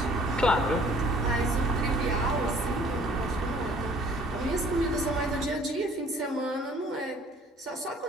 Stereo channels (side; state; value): both; normal; correlation 0.55